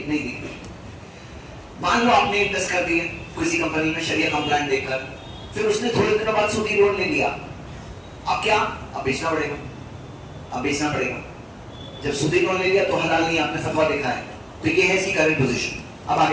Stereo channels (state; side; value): identical; both; correlation 1.00